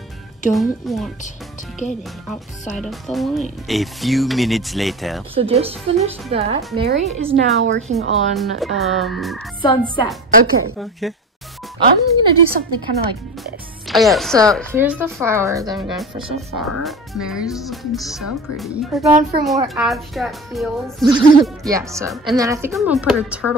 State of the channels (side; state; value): both; normal; correlation 0.31